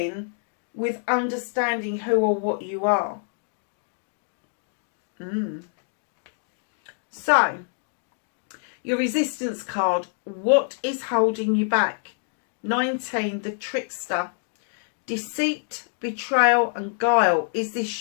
with understanding who or what you are. So, your resistance card, what is holding you back? 19, the trickster. Deceit, betrayal and guile. Is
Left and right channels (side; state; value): right; silent; 61 dB below the other